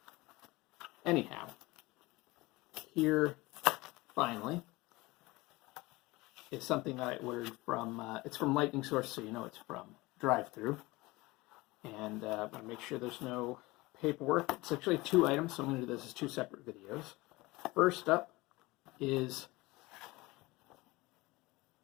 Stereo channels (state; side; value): quieter; right; 21.6 dB